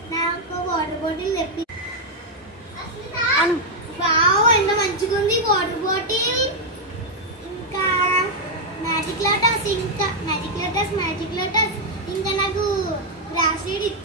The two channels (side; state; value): both; normal; correlation -0.01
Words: నాకు water bottle తెప్పి. Wow ఎంత మంచిగా ఉంది వాటర్ బాటిల్. ఇంకా మ్యాజిక్ లోటస్ ఇంకా నాకు బ్రాస్లెట్